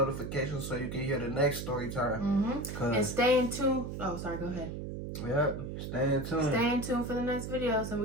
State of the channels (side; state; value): right; noise; hum, 6 dB below the sound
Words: so you can hear the next story time. And stay in tune. Oh, sorry, go ahead. Yep, stay in tune. Stay in tune for the next videos, and